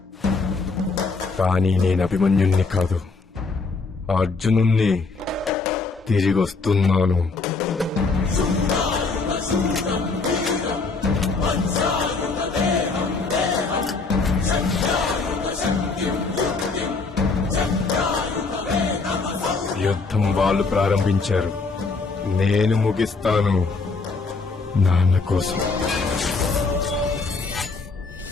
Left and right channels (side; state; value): right; quieter; 4.1 dB